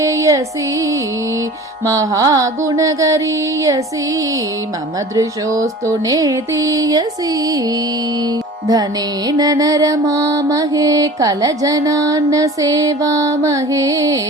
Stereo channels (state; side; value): normal; both; correlation 0.41